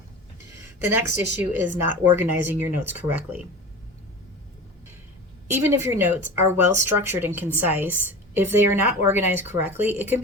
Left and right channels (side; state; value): both; normal; correlation 0.33